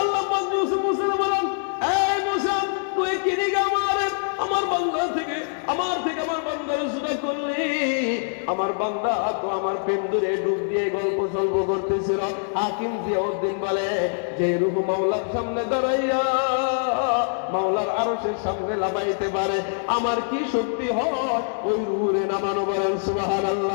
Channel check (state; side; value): silent; right; 63 dB below the other